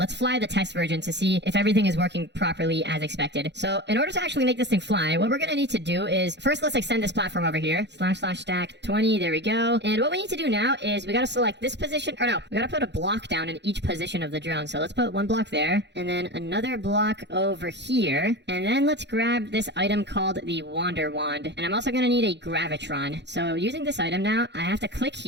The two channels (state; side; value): late; left; 0.51 ms